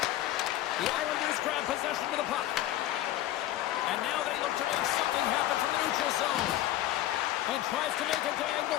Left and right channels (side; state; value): right; quieter; 14.0 dB